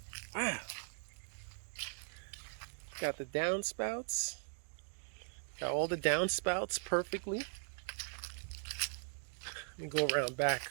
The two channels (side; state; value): left; silent; digital silence